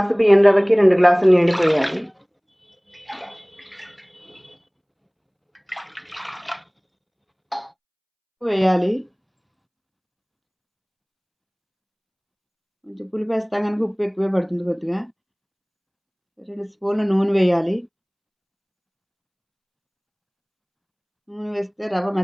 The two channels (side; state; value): both; identical; correlation 1.00